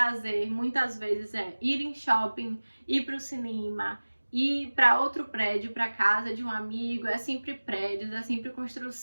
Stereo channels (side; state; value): both; inverted; correlation -1.00